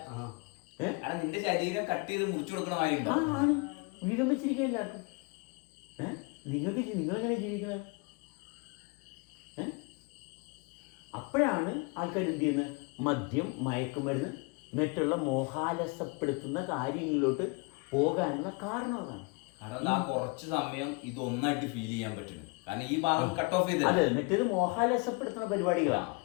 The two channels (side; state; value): right; quieter; 29.9 dB